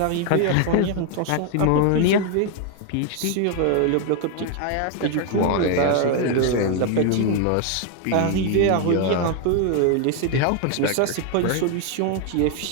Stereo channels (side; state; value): both; different; correlation 0.01